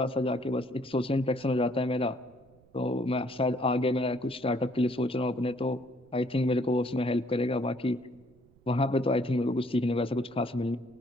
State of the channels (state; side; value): noise; right; rumble, 29 dB below the sound